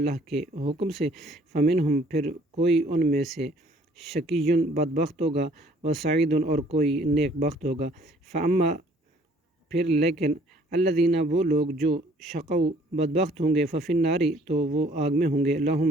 کے حکم سے فمنہم پھر کوئی ان میں سے شقیٌ بدبخت ہوگا و سعید اور کوئی نیک بخت ہوگا فاما پھر لیکن الذین وہ لوگ جو شقوا بدبخت ہوں گے ففی النار تو وہ آگ میں ہوں گے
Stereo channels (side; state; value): both; normal; correlation 0.58